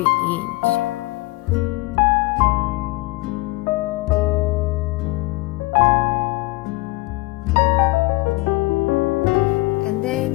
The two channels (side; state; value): right; quieter; 21.5 dB